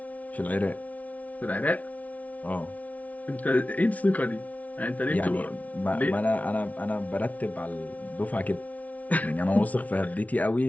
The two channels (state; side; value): late; right; 0.070 ms